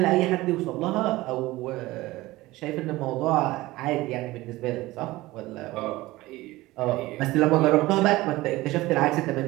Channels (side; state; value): left; quieter; 18.8 dB